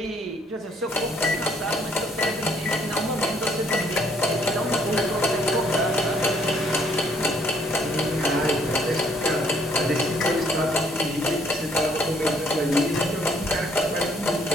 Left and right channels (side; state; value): both; normal; correlation 0.65